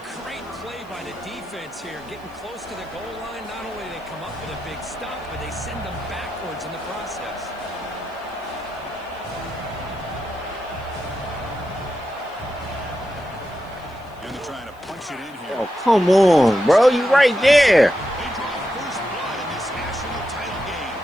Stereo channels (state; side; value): noise; left; hiss, 30 dB below the sound